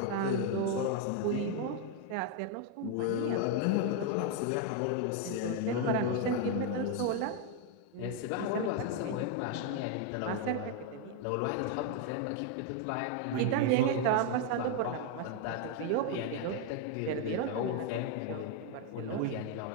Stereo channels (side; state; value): both; different; correlation 0.01